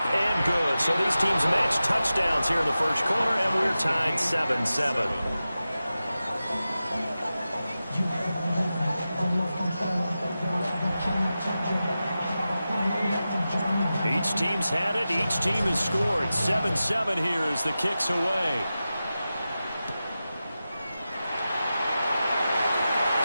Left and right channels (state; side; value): inverted; both; correlation -0.93